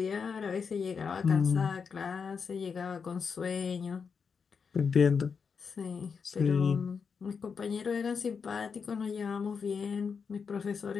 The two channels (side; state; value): right; quieter; 5.9 dB